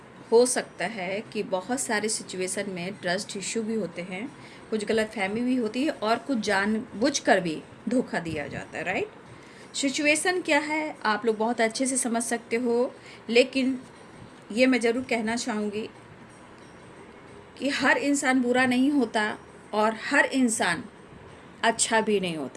हो सकता है कि बहुत सारे सिचुएशन में ट्रस्ट इशू भी होते हैं, कुछ गलतफहमी भी होती है और कुछ जानबूझकर भी धोखा दिया जाता है, राइट। सिचुएशन क्या है आप लोग बहुत अच्छे से समझ सकते हो, लेकिन ये मैं ज़रूर कहना चाहूँगी कि हर इंसान बुरा नहीं होता और हर इंसान अच्छा भी नहीं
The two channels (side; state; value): both; identical; correlation 1.00